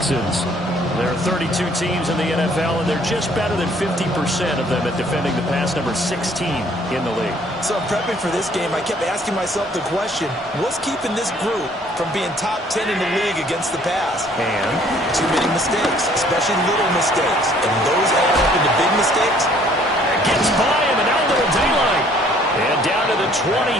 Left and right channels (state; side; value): normal; both; correlation 0.59